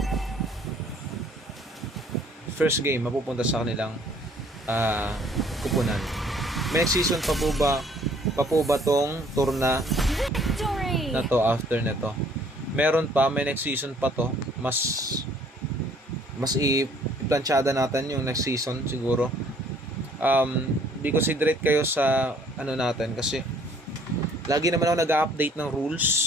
First game mapupunta sa kanilang kupunan. May next season pa po ba tong tour na to after nito? Meron pa, may next season pa to. Mas i-planchada natin yung next season siguro. Di considerate kayo sa ano natin kasi lagi naman ako nag-update ng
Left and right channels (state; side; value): normal; both; correlation 0.59